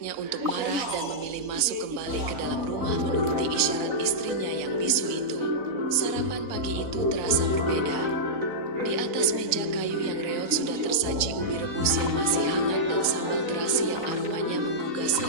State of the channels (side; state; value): left; late; 3.9 ms